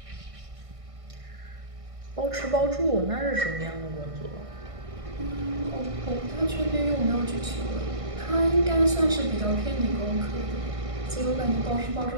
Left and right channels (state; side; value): late; left; 1.6 ms